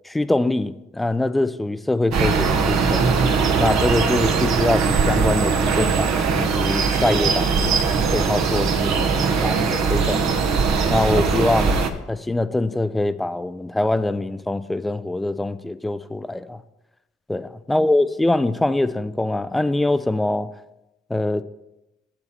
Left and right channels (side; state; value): both; normal; correlation 0.73